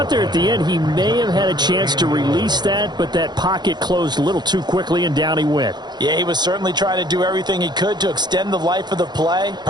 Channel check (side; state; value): left; late; 0.21 ms